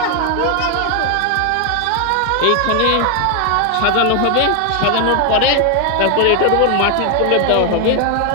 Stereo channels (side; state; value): both; different; correlation 0.00